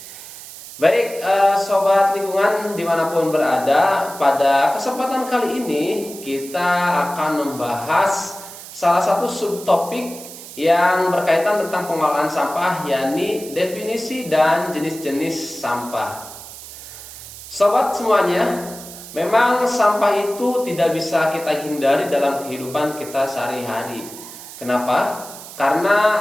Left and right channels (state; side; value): noise; right; hiss, 14 dB below the sound